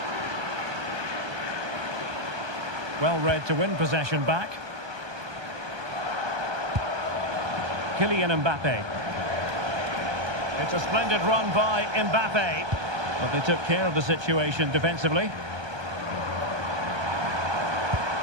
Well read to win possession back. Kylian Mbappe. It's a splendid run by Mbappe. But they took care of the situation defensively.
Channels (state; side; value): late; left; 1.2 ms